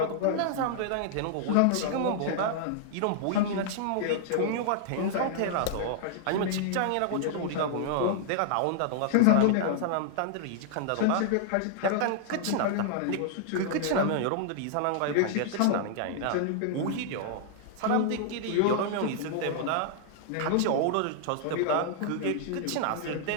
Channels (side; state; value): both; different; correlation -0.01